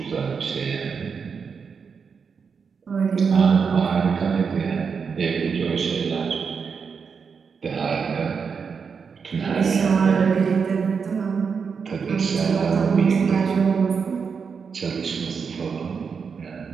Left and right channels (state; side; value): quieter; left; 5.9 dB